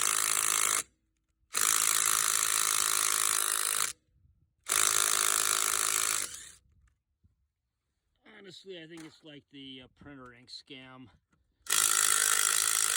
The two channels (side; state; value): both; identical; correlation 1.00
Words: Honestly, I think it's like the printer ink scam.